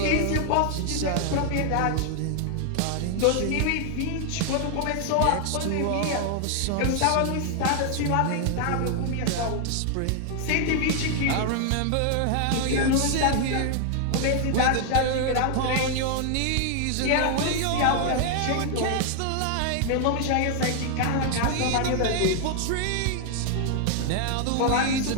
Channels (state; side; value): different; both; correlation 0.00